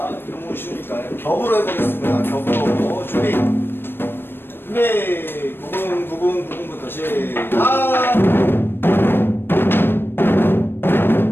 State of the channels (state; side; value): late; right; 0.10 ms